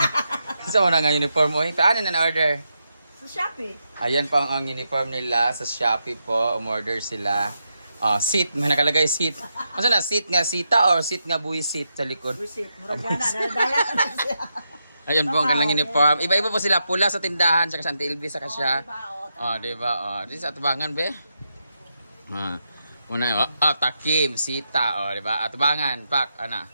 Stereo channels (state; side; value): inverted; both; correlation -0.84